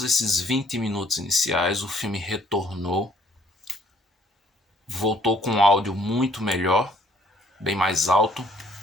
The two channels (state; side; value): normal; both; correlation 0.62